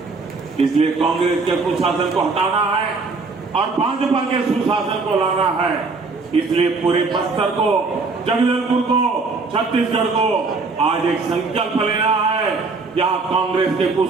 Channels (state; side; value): quieter; left; 4.1 dB